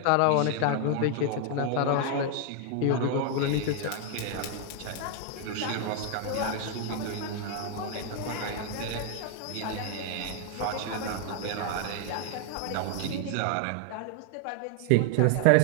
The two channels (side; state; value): both; different; correlation 0.00